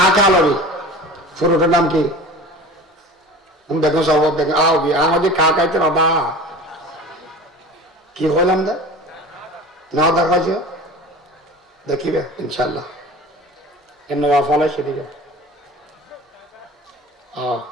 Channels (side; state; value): both; normal; correlation 0.38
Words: লবি ফুরুটের নাম কি দেখো সব দেখো আবি আমাদের কাকাইতে বাবা কি হলাম দা না দেখাছ দেখিবে ইনশাল্লাহ এর ফলে সেদিকে